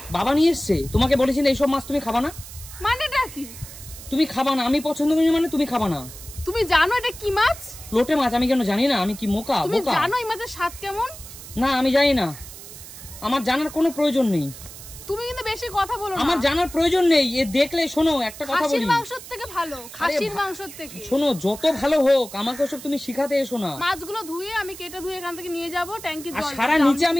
বাবা নিয়ে এসেছে? তোমাকে বলেছিল এইসব মাছ তুমি খাবা না। মানেটা কি? তুমি খাবা না, আমি পছন্দ করি মানে তুমি খাবা না। তুমি জানো এটা কি মাছ? লোটে মাছ। আমি কেন জানি না? আমি কি মোকা? তুমি জানো এই মাছের স্বাদ কেমন? না, আমি জানি না, আমার জানার কোনো প্রয়োজন নেই। তুমি কিন্তু বেশি কথা বলো না। আমার জানার প্রয়োজন নেই। এ দেখলে শোনো, একটা কথা বলি, খাসির মাংসের থেকে ভালো, খাসির মাংসের থেকে। শোনো, যত ভালো হোক আমাকে ওসব তুমি শিখাতে এসো না। মাছগুলো ধুয়ে আমি কেটে ধুয়ে এখান থেকে নিয়ে যাব ট্যাঙ্কির জল। সারা নিচে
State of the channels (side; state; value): right; noise; hiss, 15 dB below the sound